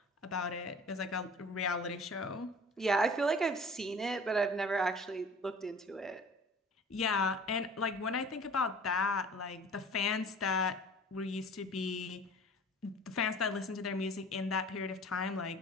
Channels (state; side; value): normal; both; correlation 0.45